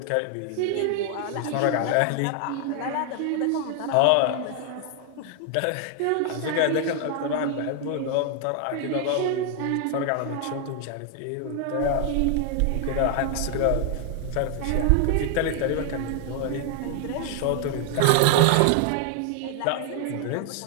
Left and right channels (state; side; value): different; both; correlation 0.00